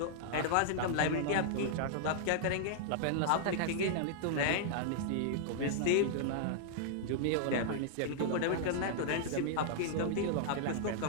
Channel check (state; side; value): different; both; correlation -0.01